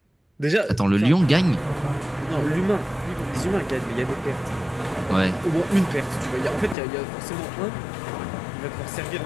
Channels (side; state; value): right; drops out; at 6.8 s